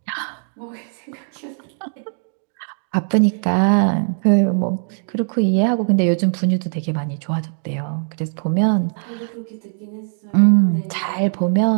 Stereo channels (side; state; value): left; silent; digital silence